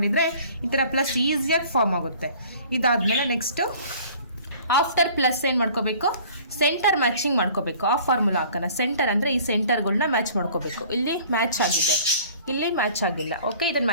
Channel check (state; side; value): inverted; both; correlation -0.49